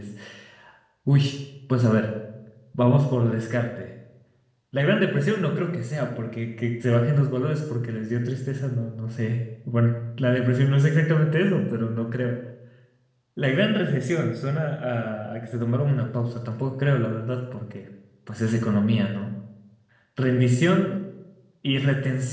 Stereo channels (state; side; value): identical; both; correlation 1.00